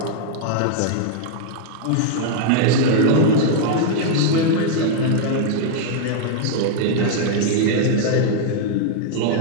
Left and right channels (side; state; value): both; different; correlation -0.01